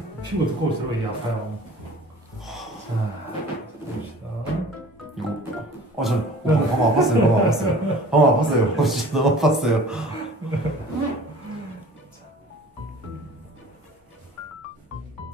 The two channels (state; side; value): normal; both; correlation 0.46